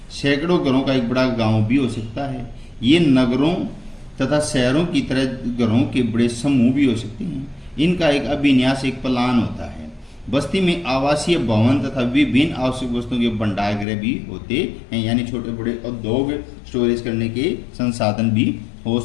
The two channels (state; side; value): drops out; right; at 13.9 s